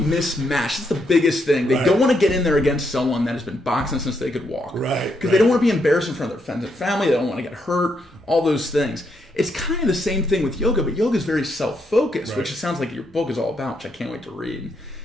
That's the biggest thing. They don't want to get in there against someone that has been boxing since they could walk. Right. Because they don't want to be embarrassed in front of their friends and family. They don't want to get hurt. All those things. It's kind of the same thing with yoga, but yoga is very self-focused, which it sounds like your book is all about, which I can't wait to read.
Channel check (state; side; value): normal; both; correlation 0.78